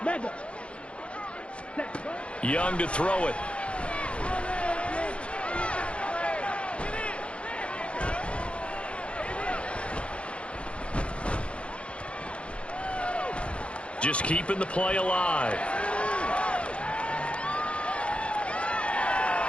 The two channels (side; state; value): right; late; 0.060 ms